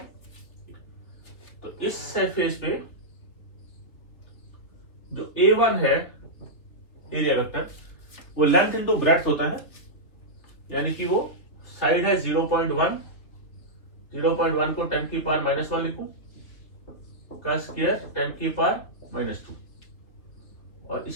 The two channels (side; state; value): right; late; 3.1 ms